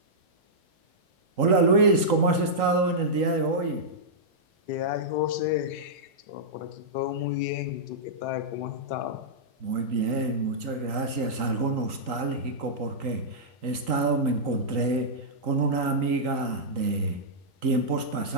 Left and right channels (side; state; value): left; late; 3.8 ms